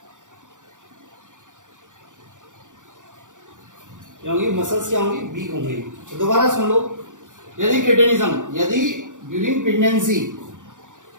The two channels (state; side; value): late; left; 0.87 ms